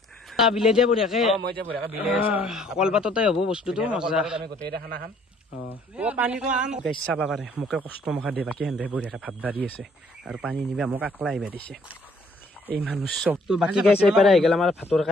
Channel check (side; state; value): both; normal; correlation 0.62